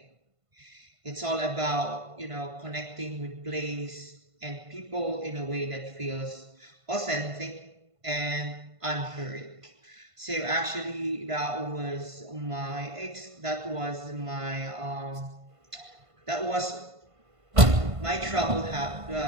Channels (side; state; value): left; late; 1.5 ms